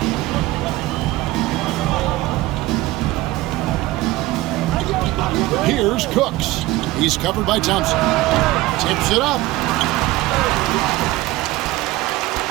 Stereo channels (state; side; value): quieter; left; 18.1 dB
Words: Here's Cooks. He's covered by Thompson. Tips it up.